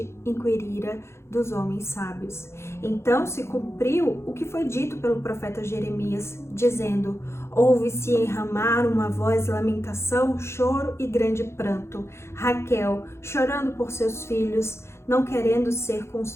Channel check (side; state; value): right; late; 0.13 ms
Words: inquirira dos homens sábios. Então se cumpriu o que foi dito pelo profeta Jeremias, dizendo, ouve-se em Ramá uma voz de lamentação, choro e grande pranto. Raquel, chorando por seus filhos, não querendo ser